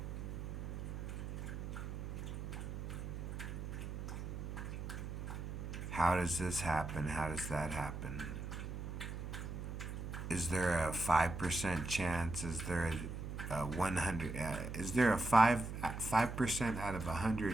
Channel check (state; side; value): noise; right; hum, 6 dB below the sound